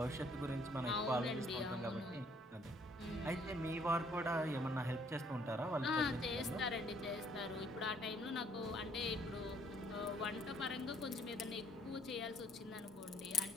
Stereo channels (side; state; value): both; normal; correlation 0.64